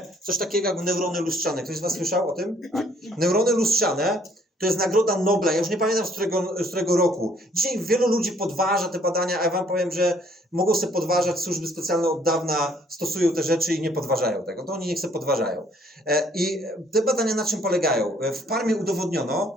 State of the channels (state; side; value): normal; both; correlation 0.62